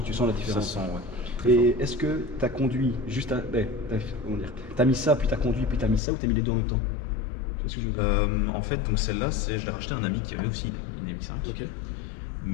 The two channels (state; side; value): drops out; right; at 6.0 s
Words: la Ça différence. sent, ouais. Très Et est-ce que tu as conduit juste à. Comment dire? T'as mis ça, puis t'as conduit, puis t'as mis ça, ou t'as mis les deux en même temps? Tu vois ce que je veux dire? En fait, donc celle-là, je l'ai racheté à un ami qui avait aussi une MX5. Ok.